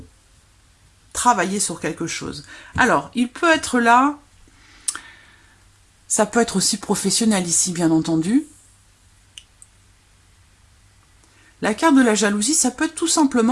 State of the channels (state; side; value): identical; both; correlation 1.00